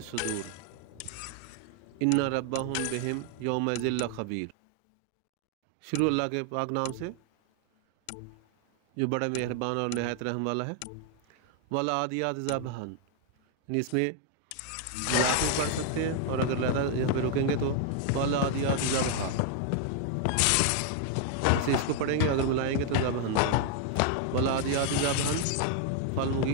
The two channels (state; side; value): different; both; correlation 0.00